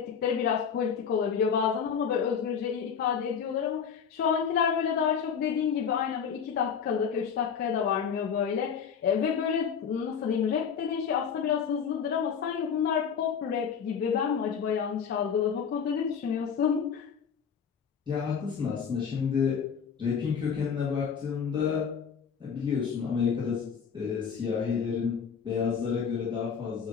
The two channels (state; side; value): quieter; right; 7.0 dB